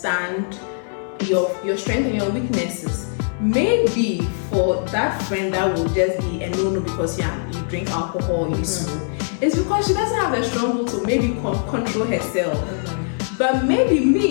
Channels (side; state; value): right; silent; digital silence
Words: your strengths and your weaknesses. Maybe for that friend that will just be a no because you drink alcohol, you smoke, it's because she doesn't have the strong will to maybe control herself. But maybe